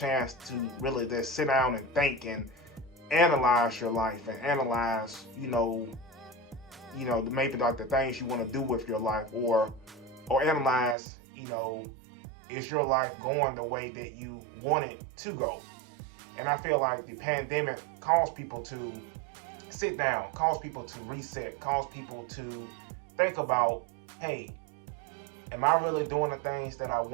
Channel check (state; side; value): drops out; left; at 11.0 s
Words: to really just sit down and think and analyze your life and analyze, maybe like the things you want to do with your life, or analyze, is your life going the way that you want it to go? And I feel like the pandemic caused people to sit down, caused people to reset, caused people to think about, hey, am I really doing the things that I